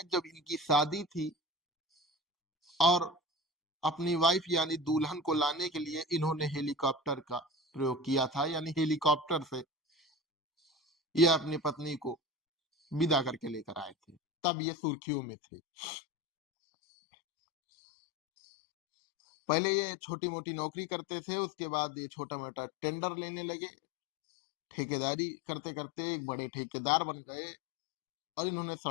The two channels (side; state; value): right; drops out; at 14.2 s